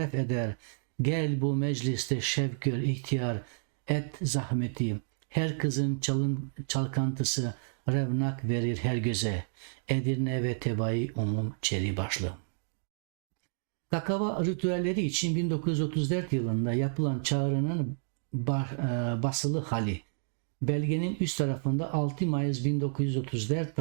eder. Gel bu mecliste şevk gör ihtiyar, et zahmeti. Her kızın çalkantısı revnak verir her göze. Edirne ve Tebai Umum Çeri Başlı. Kakava ritüelleri için 1934 yılında yapılan çağrının basılı hali. Belgenin üst tarafında 6 Mayıs 1934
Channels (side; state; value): left; silent; digital silence